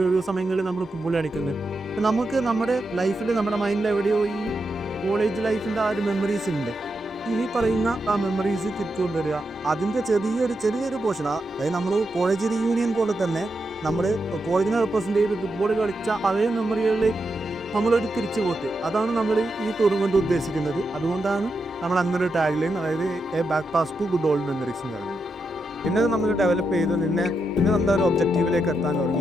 ഒരു സമയങ്ങളിൽ നമ്മൾ ഫുട്ബോൾ കളിക്കുന്നത്. നമുക്ക് നമ്മുടെ ലൈഫിൽ നമ്മുടെ മൈൻഡിൽ എവിടെയോ ഈ കോളേജ് ലൈഫിൻ്റെ ആ ഒരു മെമ്മറീസ് ഉണ്ട്. ഈ പറയുന്ന ആ മെമ്മറീസ് തിരിച്ചുകൊണ്ടുവരിക, അതിൻ്റെ ചെറിയൊരു പോർഷൻ, അതായത് നമ്മൾ കോളേജ് റീയൂണിയൻ പോലെ തന്നെ നമ്മൾ കോളേജിനെ റെപ്രസെൻ്റ് ചെയ്ത് ഫുട്ബോൾ കളിച്ച അതേ മെമ്മറികളിലേക്ക് നമ്മളൊരു തിരിച്ചു പോക്ക്, അതാണ് നമ്മൾ ഈ ടൂർണമെൻറ്റ് ഉദ്ദേശിക്കുന്നത്. അതുകൊണ്ടാണ് നമ്മൾ അങ്ങനെ ടാഗ് ലൈൻ, അതായത് a back pass to good old memories എന്ന് പറയുന്നത്. പിന്നെ നമ്മൾ ഡെവലപ്പ് ചെയ്ത് പിന്നെ എന്താ ഒരു ഒബ്ജക്റ്റീവിലേക്ക് എത്താൻ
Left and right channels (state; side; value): normal; both; correlation 0.85